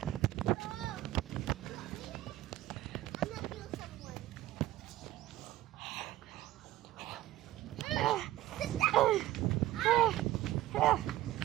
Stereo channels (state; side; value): quieter; left; 15.0 dB